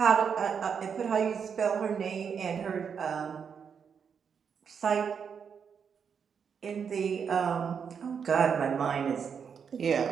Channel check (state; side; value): quieter; left; 6.8 dB